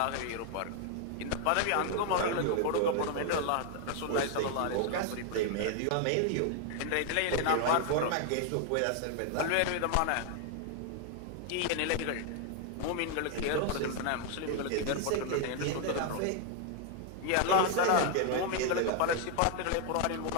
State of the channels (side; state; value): both; different; correlation 0.00